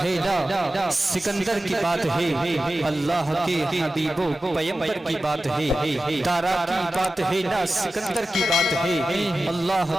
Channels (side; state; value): both; normal; correlation 0.94